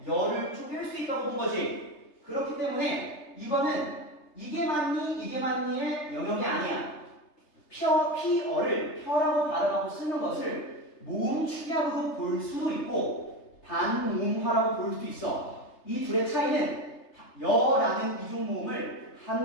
여를 쪼갤 수 있다고 본 거지. 그렇기 때문에 이거는 이게 맞니의 영역이 아니야. 피어를 펴라고 발음하고 쓰는 것을 모음 축약으로 볼 수도 있고 반모음화라고 볼 수도 있어. 이 둘의 차이는 여라는 이중모음을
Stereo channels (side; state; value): right; late; 3.3 ms